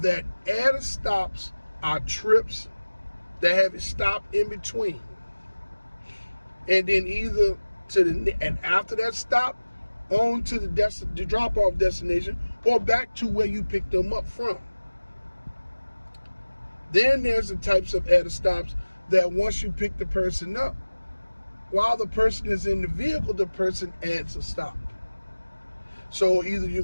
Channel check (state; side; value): inverted; both; correlation -1.00